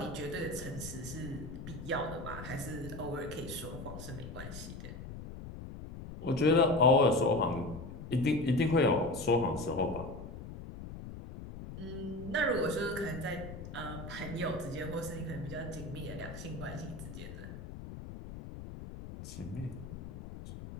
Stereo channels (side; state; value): left; noise; rumble, 10 dB below the sound